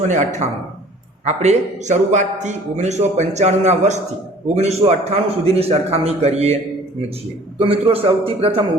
આપણે શરૂઆતથી 1995ના વર્ષથી 1998 સુધીની સરખામણી કરીએ છીએ। તો મિત્રો, સૌથી પ્રથમ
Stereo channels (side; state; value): both; normal; correlation 0.51